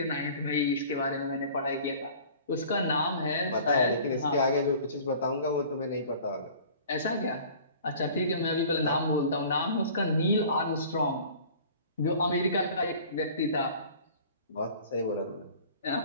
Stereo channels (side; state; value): both; inverted; correlation -0.46